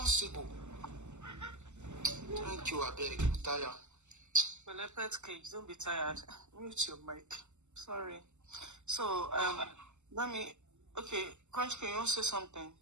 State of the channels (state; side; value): late; left; 0.83 ms